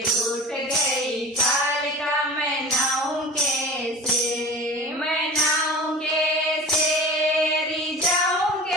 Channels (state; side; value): normal; both; correlation 0.36